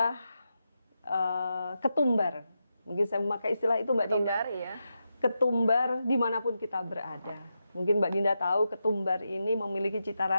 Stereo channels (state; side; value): inverted; both; correlation -0.87